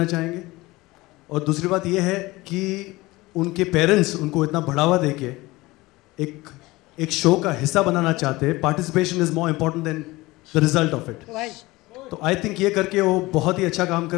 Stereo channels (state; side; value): quieter; right; 20.5 dB